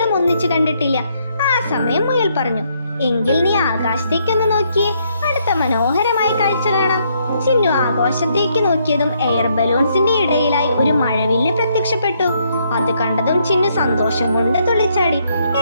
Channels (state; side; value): inverted; both; correlation -0.73